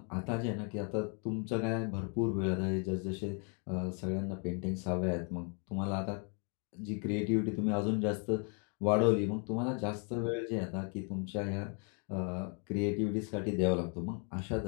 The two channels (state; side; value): quieter; right; 39.3 dB